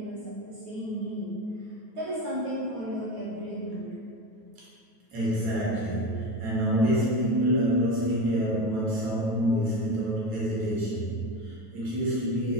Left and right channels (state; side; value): late; left; 9.2 ms